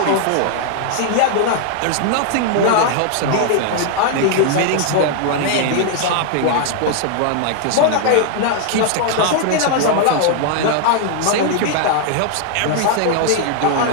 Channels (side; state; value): both; different; correlation 0.00